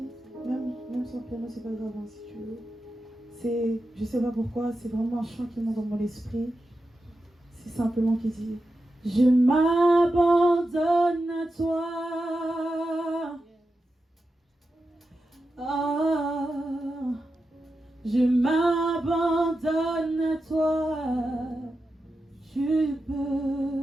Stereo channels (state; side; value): normal; both; correlation 0.90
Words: même sans piano, c'est pas grave hein, si tu veux. Je sais pas pourquoi, c'est vraiment un chant qui monte dans mon esprit. C'est simplement qui dit: je m'abandonne à toi. Ah, je m'abandonne à toi. Tu